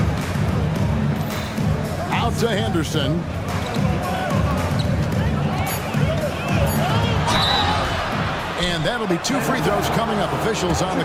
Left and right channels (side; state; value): both; identical; correlation 1.00